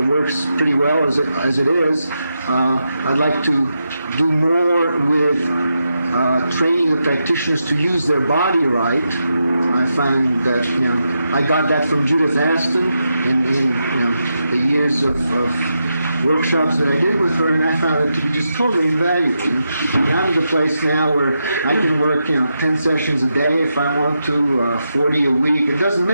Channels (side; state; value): both; inverted; correlation -0.86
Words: works pretty well as it is. I'd like to do more with training the practitioners to use their body right. I find that, I got that from Judith Aston in the years of workshops that I did with her, and I found it to be just totally invaluable. I'm at the place now where I can work 10 sessions a day if I want to, 40 a week. It doesn't